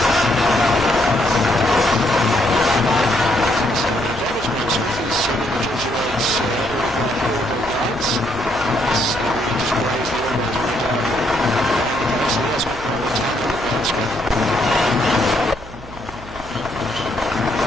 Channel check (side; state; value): right; noise; hum, 17 dB below the sound